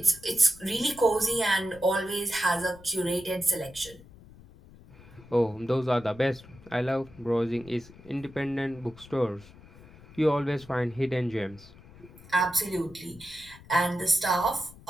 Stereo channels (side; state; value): left; noise; rumble, 21 dB below the sound